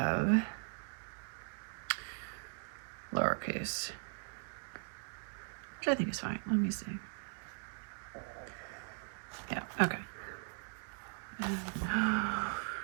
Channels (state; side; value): silent; left; 52 dB below the other